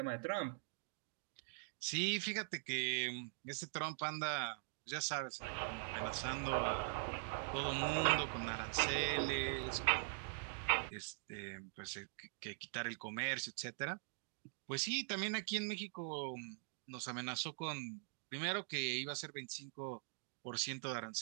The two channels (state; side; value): silent; left; digital silence